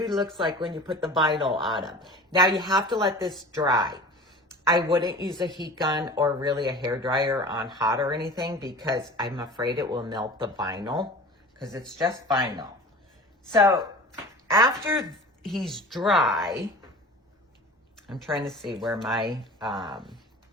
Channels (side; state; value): both; normal; correlation 0.39